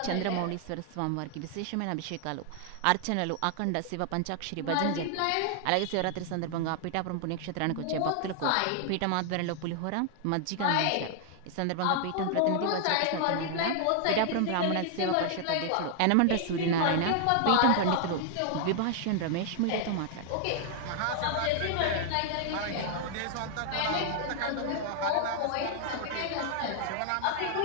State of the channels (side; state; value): both; different; correlation 0.00